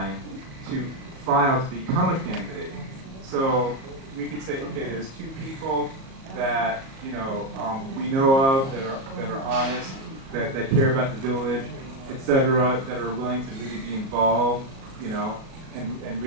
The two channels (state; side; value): late; left; 37 ms